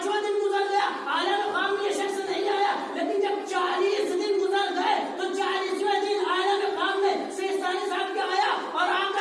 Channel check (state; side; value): identical; both; correlation 1.00